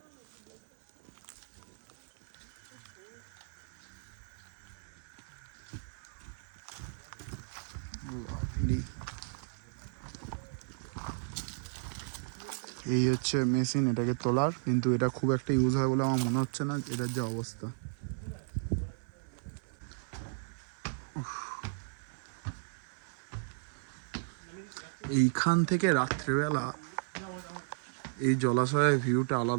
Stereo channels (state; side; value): silent; left; 55 dB below the other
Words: Lovely. এই হচ্ছে মেশিন এটাকে তোলার, কিন্তু এটা খুব একটা ইউজ হয় বলে আমার মনে হচ্ছে না, এটার যে অবস্থা। এইখান থেকে রাত্রেবেলা এই জলাশয়ের ভিউটা